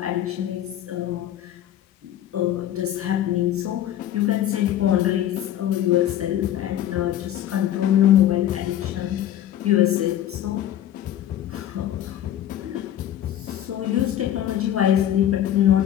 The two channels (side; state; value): right; quieter; 11.7 dB